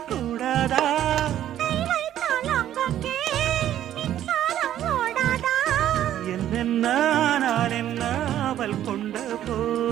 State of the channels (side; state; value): left; quieter; 11.7 dB